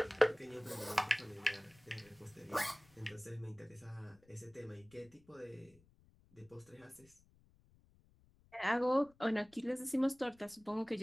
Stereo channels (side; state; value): left; noise; rumble, 29 dB below the sound